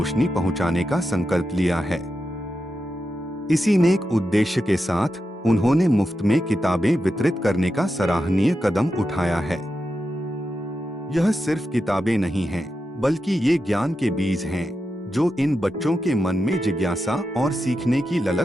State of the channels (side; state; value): both; normal; correlation 0.88